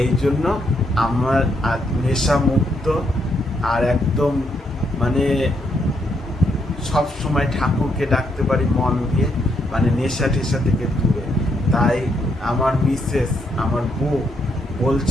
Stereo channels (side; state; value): both; normal; correlation 0.76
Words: এই জন্য আমার নেশা মুক্ত আর একদম মানে সব সময় ঠাকুরকে ডাকতে পারি মন দিয়ে, মানে নেশা টেশা থেকে দূরে। তাই আমার মিসেস, আমার বউ